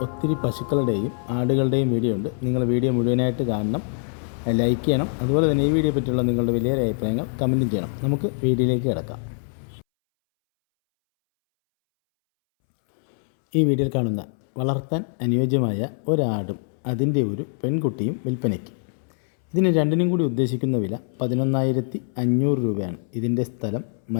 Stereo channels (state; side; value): silent; right; 63 dB below the other